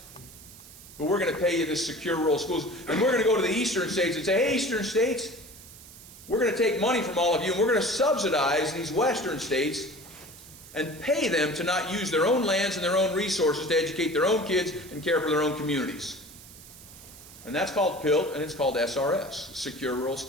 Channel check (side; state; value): right; noise; hiss, 19 dB below the sound